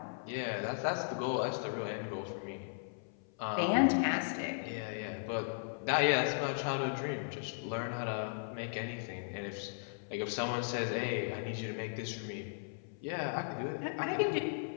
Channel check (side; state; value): right; silent; 53 dB below the other